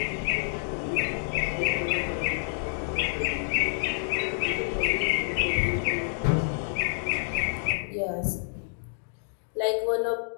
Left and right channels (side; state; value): right; silent; digital silence